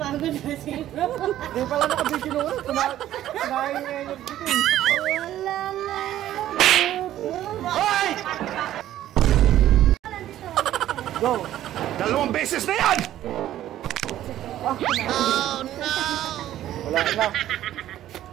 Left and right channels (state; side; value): quieter; left; 12.8 dB